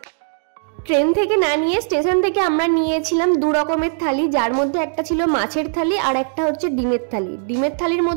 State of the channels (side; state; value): left; silent; digital silence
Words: ট্রেন থেকে না নিয়ে স্টেশন থেকে আমরা নিয়েছিলাম 2 রকমের থালি, যার মধ্যে একটা ছিল মাছের থালি আর একটা হচ্ছে ডিমের থালি। ডিমের থালির